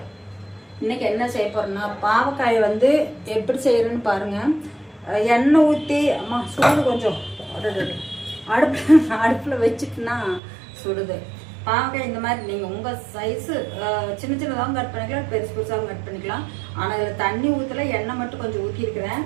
இன்னைக்கு என்ன செய்ய போறேன்னா பாவக்காயை வந்து எப்படி செய்யறேன்னு பாருங்க. எண்ணெய் ஊற்றி அம்மா சூடு கொஞ்சம் அடுப்பில் வச்சுட்டுனா சுடுது. பாவக்காய் இந்த மாதிரி நீங்கள் உங்கள் சைஸு சின்ன சின்னதாகவும் கட் பண்ணிக்கலாம், பெருசு பெருசாகவும் கட் பண்ணிக்கலாம். ஆனால் இதில் தண்ணி ஊற்றல, எண்ணெய் மட்டும் கொஞ்சம் ஊற்றிருக்கிறேன்.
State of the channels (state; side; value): drops out; left; at 10.4 s